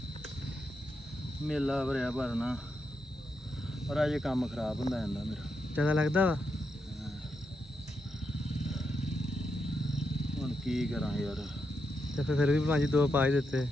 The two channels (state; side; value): normal; both; correlation 0.84